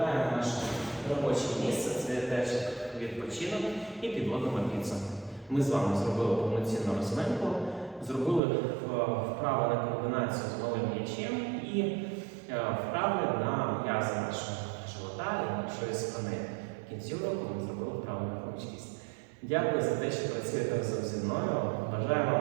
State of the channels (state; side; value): drops out; left; at 8.4 s